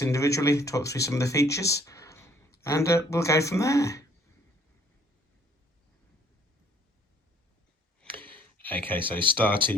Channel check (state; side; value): normal; both; correlation 0.61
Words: individually, talk through some of the features, and we'll go from there. Okay, so